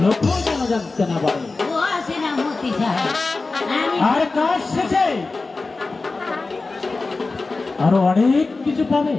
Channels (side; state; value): right; quieter; 3.7 dB